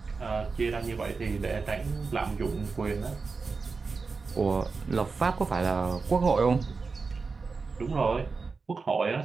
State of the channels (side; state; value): left; quieter; 4.5 dB